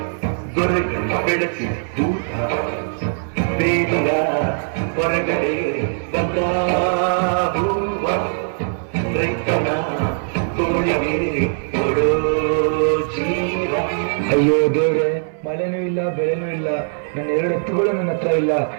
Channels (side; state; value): left; silent; 59 dB below the other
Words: ದೊರೆಗಳು ಬೆಳೆಸಿ ದೂತ ಬೇಲಿಯ ಹೊರಗಡೆ ಬಂದ ಹೂವ ರೈತನ ತೋಳಿಗೆ ಕೊಡೋ ಜೀವ. ಅಯ್ಯೋ ದೇವ್ರೆ, ಮಳೆನೂ ಇಲ್ಲ ಬೆಳೆನೂ ಇಲ್ಲ, ನನ್ನ 2 ಎತ್ತುಗಳು ನನ್ನ ಹತ್ರ ಇಲ್ಲ.